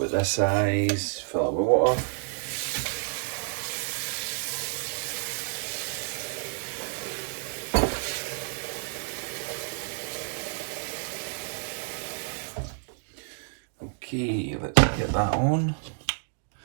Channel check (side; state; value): left; silent; 58 dB below the other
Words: this size, fill it with water. Okay, let's get that on.